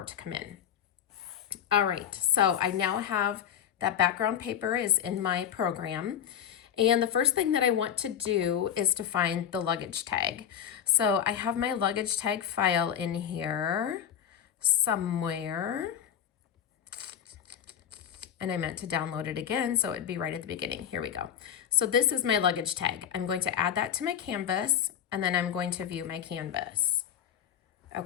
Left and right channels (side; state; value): right; quieter; 9.2 dB